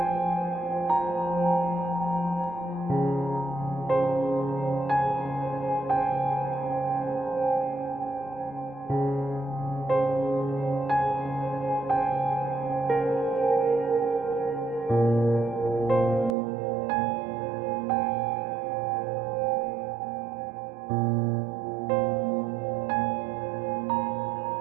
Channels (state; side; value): drops out; left; at 16.4 s